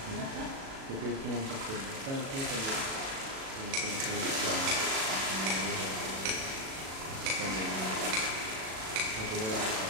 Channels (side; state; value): left; late; 37 ms